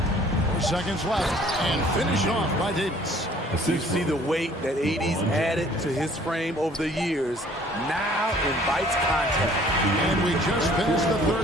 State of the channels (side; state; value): both; normal; correlation 0.55